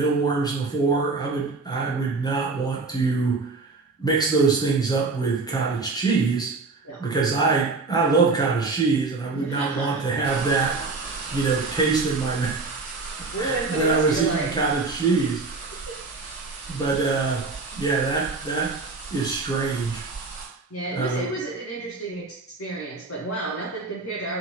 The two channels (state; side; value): quieter; left; 3.8 dB